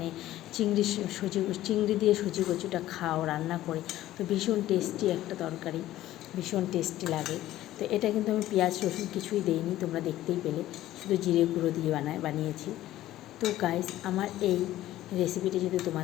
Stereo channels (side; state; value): right; quieter; 14.4 dB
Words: চিংড়ি দিয়ে সজি কচুটা খাও রান্না করে, তো ভীষণ টেস্টি একটা তরকারি, ভীষণ টেস্টি লাগে। তো এটা কিন্তু আমি পেঁয়াজ রসুন কিছুই দেইনি, তোমরা দেখতেই পেলে, শুধু জিরে গুঁড়ো দিয়ে বানিয়েছি। তো গাইস, আমার এই রেসিপিটি যদি